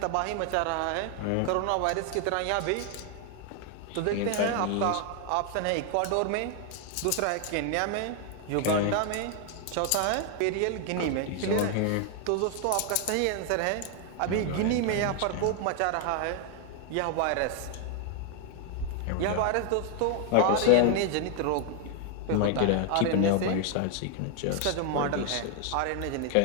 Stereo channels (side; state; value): both; different; correlation 0.00